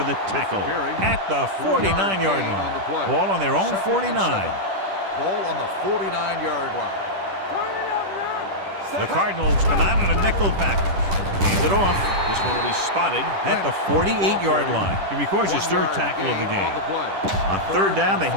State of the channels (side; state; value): left; late; 10 ms